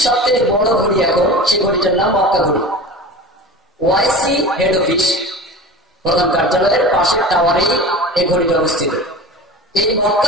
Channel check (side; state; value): both; normal; correlation 0.34